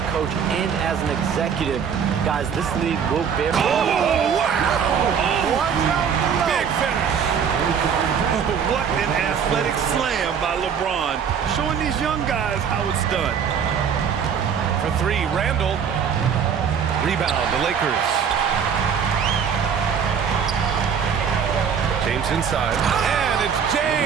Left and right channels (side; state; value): left; quieter; 7.2 dB